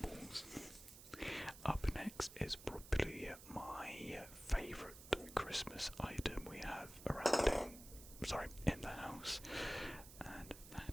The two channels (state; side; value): noise; right; hiss, 15 dB below the sound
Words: Up next is probably my favourite Christmas item we have in the house, and